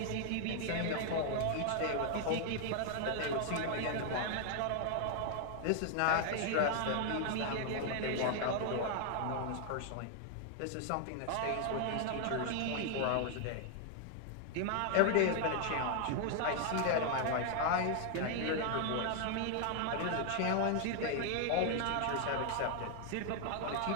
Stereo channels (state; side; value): different; both; correlation 0.00